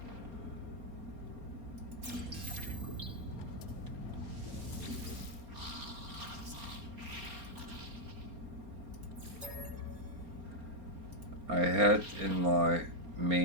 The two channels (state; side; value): late; left; 4.3 ms